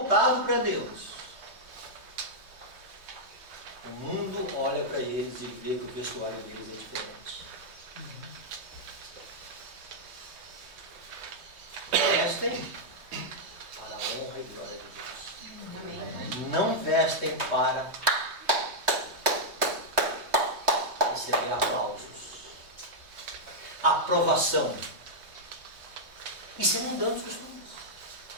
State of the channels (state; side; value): late; left; 3.2 ms